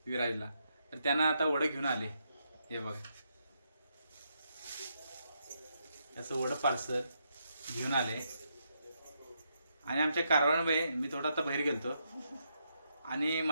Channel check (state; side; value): inverted; both; correlation -0.80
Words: विराजला. तर त्यांना आता वडं घेऊन आले. हे बघा त्याचं वडं पार्सल घेऊन आले. आणि आमच्या कारभारबाई मी थोडा आता बाहेर गेलतो आणि